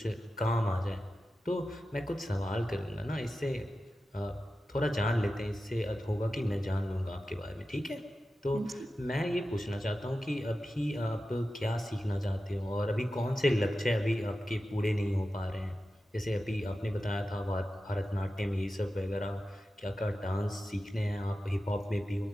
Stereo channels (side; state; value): both; normal; correlation 0.93